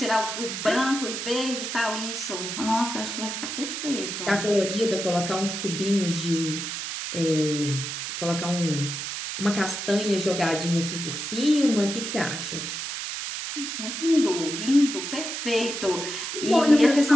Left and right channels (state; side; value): noise; right; hiss, 5 dB below the sound